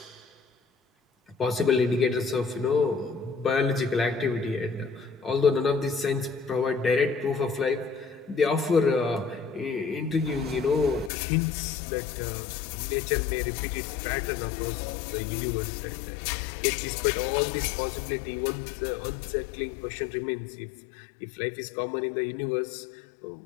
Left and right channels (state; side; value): drops out; right; at 11.1 s